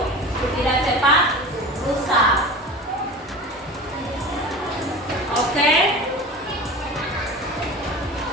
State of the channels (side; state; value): both; normal; correlation 0.34